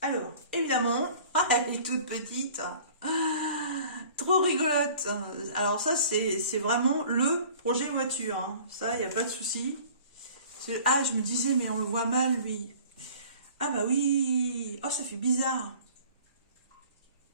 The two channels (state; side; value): inverted; both; correlation -0.47